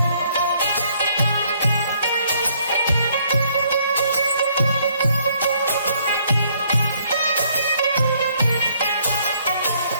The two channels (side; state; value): both; inverted; correlation -0.67